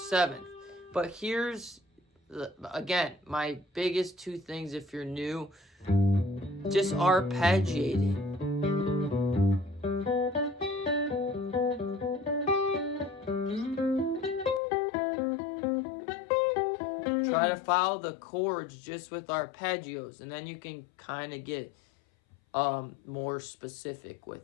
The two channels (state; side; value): drops out; right; at 14.6 s